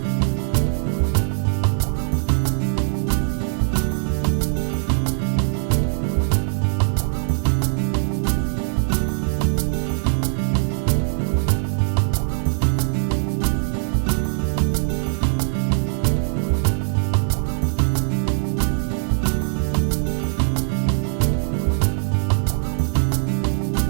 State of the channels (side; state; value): left; silent; 63 dB below the other